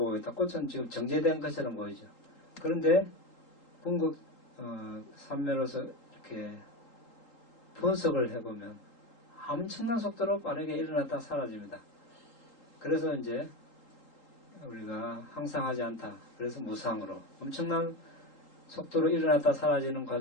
있다. 꽃은 지금 정제된 것처럼 보이죠. 그런데 궁극 삼매로서 이렇게 분석을 해보면 엄청난 속도로 빠르게 일어났다 사라집니다. 그래서 이제 우리가 항상 하지 않다. 그래서 무상으로 엄청난 속도로 일어났다 사라지는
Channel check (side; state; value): right; late; 3.8 ms